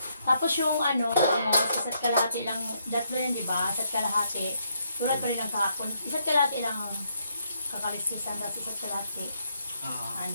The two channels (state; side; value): inverted; both; correlation -0.75